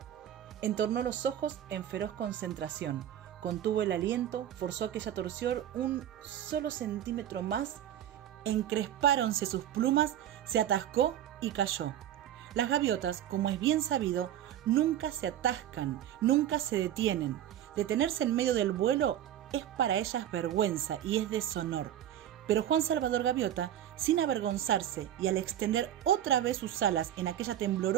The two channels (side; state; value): left; quieter; 11.2 dB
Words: Entornó los ojos en feroz concentración, contuvo el aliento, forzó aquella torsión un solo centímetro más, encrespáronse sus plumas, se atascó y cayó. Las gaviotas, como es bien sabido, nunca se atascan, nunca se detienen. Detenerse en medio del vuelo es para ellas vergüenza y es deshonor. Pero Juan Salvador Gaviota, sin avergonzarse y al extender otra vez sus alas en aquella